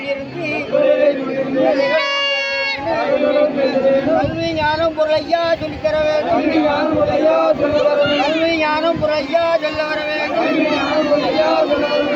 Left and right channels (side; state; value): both; identical; correlation 1.00